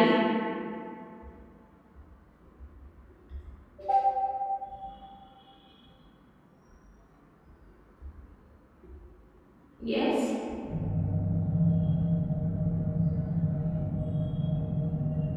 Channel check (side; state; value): both; identical; correlation 1.00